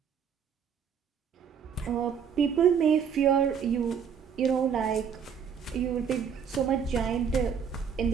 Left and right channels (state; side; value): quieter; left; 7.2 dB